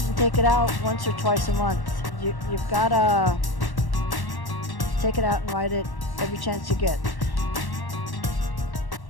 and take it out once or twice a month. You've gotta take it out and ride it every chance you get.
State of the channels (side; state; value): right; late; 1.1 ms